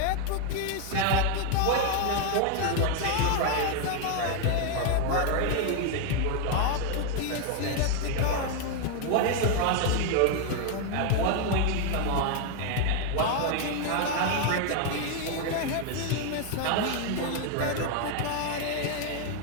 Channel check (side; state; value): both; different; correlation 0.01